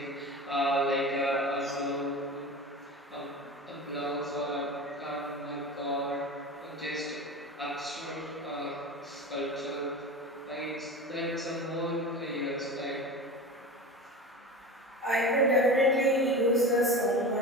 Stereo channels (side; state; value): both; normal; correlation 0.30